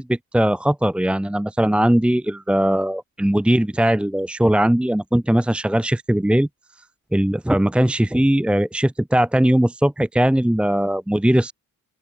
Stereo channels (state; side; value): normal; both; correlation 0.98